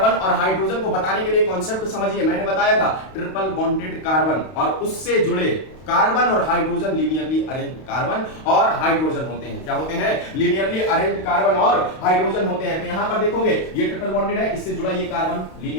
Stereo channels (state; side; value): late; right; 32 ms